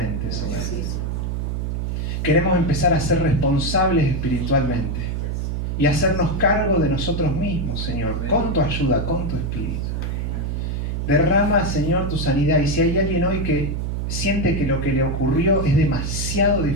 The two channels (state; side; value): noise; right; hum, 2 dB below the sound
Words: Señor. Queremos empezar a ser responsables espiritualmente y hacernos cargo de nosotros mismos, Señor, con tu ayuda, con tu Espíritu. Derrama, Señor, tu sanidad. Y si hay alguien hoy que siente que lo que le ocurrió es demasiado